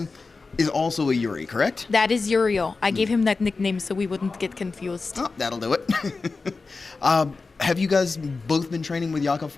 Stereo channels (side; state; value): right; quieter; 4.1 dB